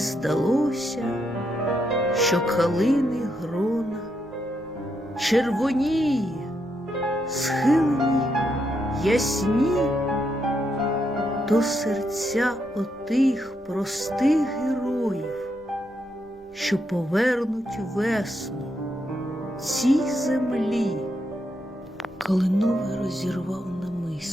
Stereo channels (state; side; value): normal; both; correlation 0.80